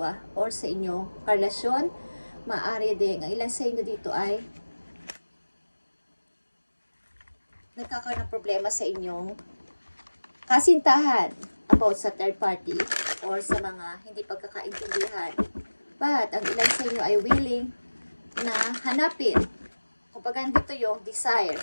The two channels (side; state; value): both; inverted; correlation -1.00